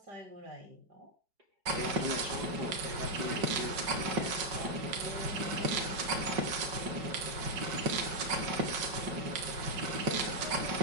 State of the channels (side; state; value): left; late; 5.3 ms